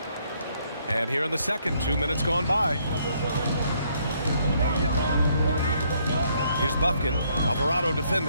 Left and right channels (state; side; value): inverted; both; correlation -0.69